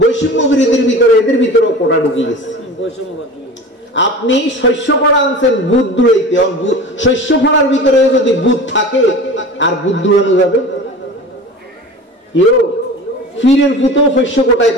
বৈষম্য বিরোধীর ভিতরে, এদের ভিতরেও কোটা ঢুকিয়ে গেছে। আপনি শস্য পড়া আনছেন বুধ দূরাইতে, শস্য পড়ার ভিতরে যদি বুধ থাকে আর বুধ দূরানো যাবে? ফিরের ফুতেও শস্য কোটায়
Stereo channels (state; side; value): normal; both; correlation 0.36